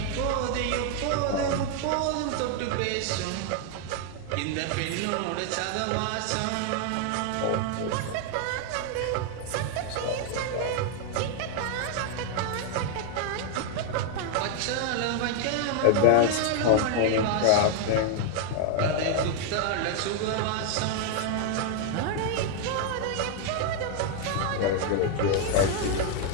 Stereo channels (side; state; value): both; different; correlation 0.00